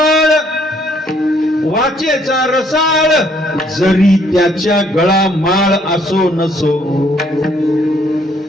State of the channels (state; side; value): normal; both; correlation 0.66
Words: वाचेचा रसाळ जरी त्याच्या गळा माळ असो नसो.